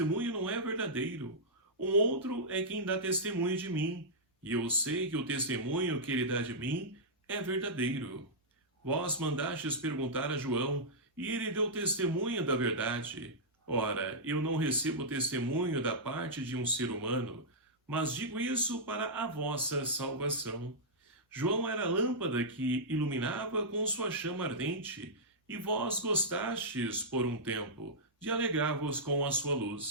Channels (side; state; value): both; normal; correlation -0.11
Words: não é verdadeiro. Um outro é quem dá testemunho de mim, e eu sei que o testemunho que ele dá de mim é verdadeiro. Vós mandastes perguntar a João, e ele deu testemunho da verdade. Ora, eu não recebo testemunho da parte de um ser humano, mas digo isso para a vossa salvação. João era a lâmpada que iluminava com sua chama ardente, e vós gostastes, por um tempo, de alegrar-vos com a sua